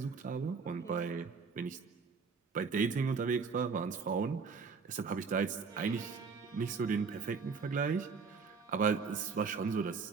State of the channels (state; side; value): quieter; left; 5.2 dB